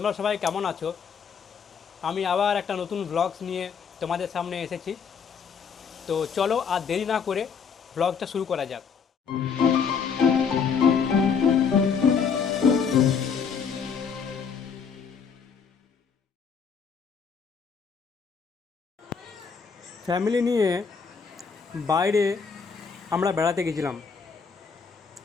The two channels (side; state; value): right; quieter; 6.2 dB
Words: সবাই কেমন আছো? আমি আবার একটা নতুন ব্লগস নিয়ে তোমাদের সামনে এসেছি। তো চলো আর দেরি না করে ব্লগটা শুরু করা যাক। ফ্যামিলি নিয়ে বাইরে আমরা বেড়াতে গেছিলাম।